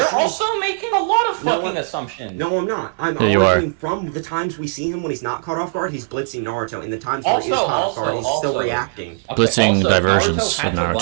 we see also making a lot of No, fucking I'm- assumptions. No, I'm not. I'm Yeah, you are. arguing from the times we see him when he's not caught off guard, he's blitzing Naruto. In the times where he is caught off guard, he's still reacting. Blitzing also, diversions Naruto had of to run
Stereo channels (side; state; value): left; silent; 64 dB below the other